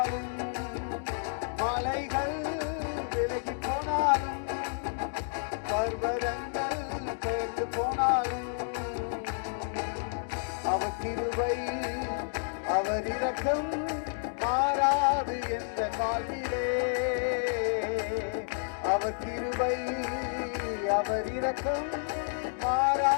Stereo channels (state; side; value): silent; right; digital silence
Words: மலைகள் விலகி போனாலும், பர்வதங்கள் பெயர்ந்து போனாலும், அவர் கிருபை அவர் இரக்கம் மாறாது என்ற வாழ்விலே. அவர் கிருபை அவர் இரக்கம்